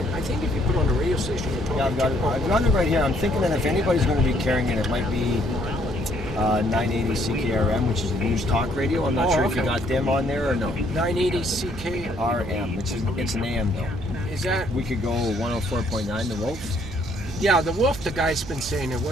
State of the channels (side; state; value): right; noise; hum, 12 dB below the sound